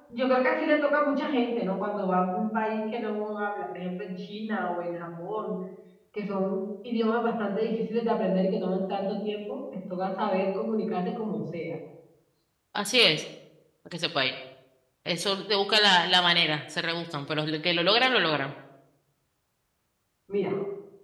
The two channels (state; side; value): identical; both; correlation 1.00